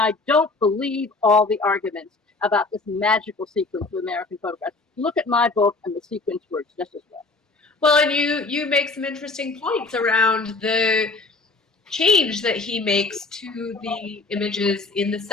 don't believe all the arguments about this magical sequence of American photographs. Look at my book, and the sequence works just as well. Well, and you make some interesting points around the change that he makes to the images in the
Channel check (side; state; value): right; quieter; 3.5 dB